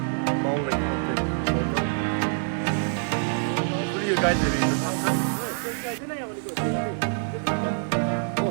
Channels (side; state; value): left; silent; 61 dB below the other